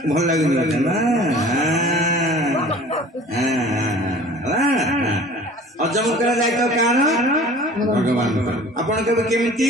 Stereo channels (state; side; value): normal; both; correlation 0.45